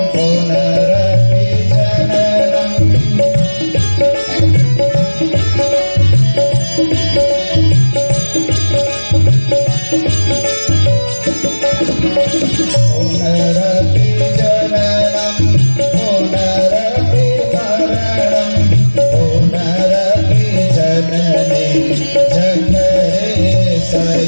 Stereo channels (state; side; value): inverted; both; correlation -1.00